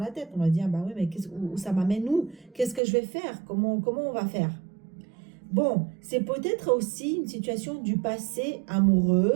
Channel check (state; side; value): drops out; left; at 2.8 s